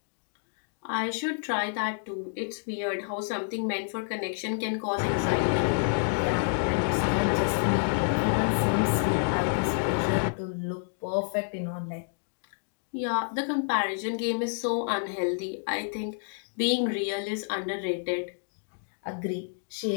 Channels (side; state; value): right; silent; digital silence